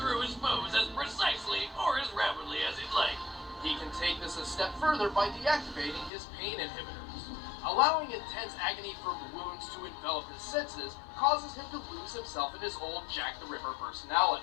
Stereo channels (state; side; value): drops out; right; at 6.1 s